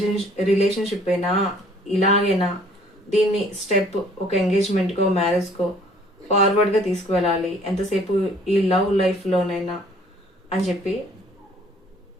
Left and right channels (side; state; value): both; normal; correlation 0.58